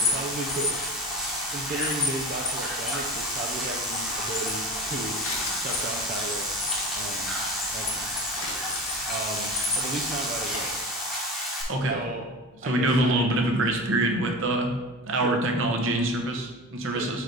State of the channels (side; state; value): both; normal; correlation 0.31